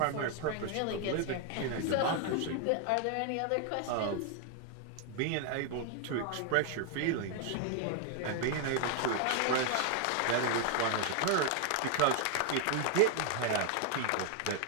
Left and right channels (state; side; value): different; both; correlation 0.01